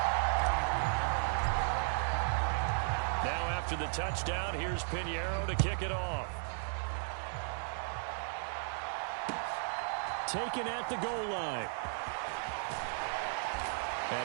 After the touchdown, here's Piñeiro to kick it off. Taken at the goal line.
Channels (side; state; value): left; silent; digital silence